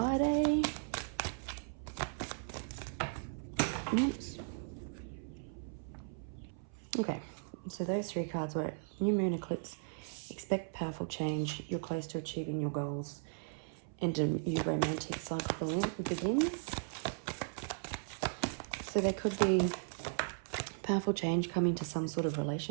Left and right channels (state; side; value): silent; left; 53 dB below the other